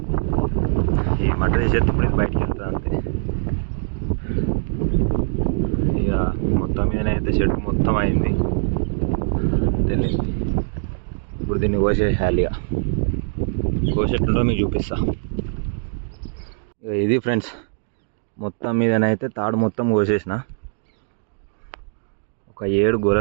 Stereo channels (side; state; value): left; silent; digital silence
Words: ఈ మట్ట తీసేటప్పుడు ఇది బయటికి వెళ్తుంది అంతే. ఇక మొత్తం మీదనైతే చెట్టు మొత్తం అయింది తెలియదు. ఇప్పుడు దీన్ని కోసేయాలి. ఇక కోసేట్టుంటో మీకు చూపిస్తా. ఇది ఫ్రెండ్స్, మొత్తం మీదనైతే తాడు మొత్తం కోసేసిన. ఒక 7